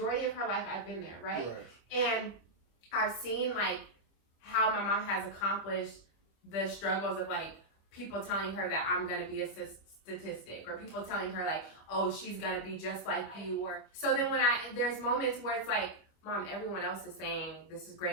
of her life, I've been there, right? And I've seen like how my mom has accomplished the struggles of like people telling her that I'm gonna be a statistic, or people telling her like, oh, she's gonna be just like you. Or so then when there's moments where it's like, Mom, everyone else is saying this is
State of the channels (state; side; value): late; right; 25 ms